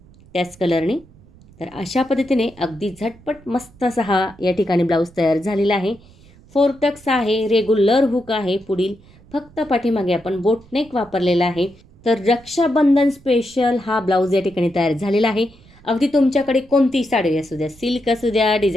त्याच कलरने. तर अशा पद्धतीने अगदी झटपट मस्त असा हा या ठिकाणी ब्लाऊज तयार झालेला आहे. 4 टक्स आहे, रेग्युलर हुक आहे, पुढील फक्त पाठीमागे आपण बोटनेक वापरलेला आहे. तर रक्षाबंधन स्पेशल हा ब्लाऊज या ठिकाणी तयार झालेला आहे. अगदी तुमच्याकडे कोणतीही साडी असू द्या, सिल्क असू द्या,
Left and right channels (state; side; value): noise; right; rumble, 25 dB below the sound